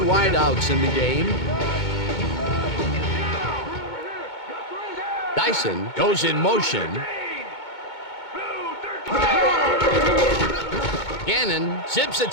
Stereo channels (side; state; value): right; late; 2.2 ms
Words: in the game. Dyson goes in motion. Gannon zips it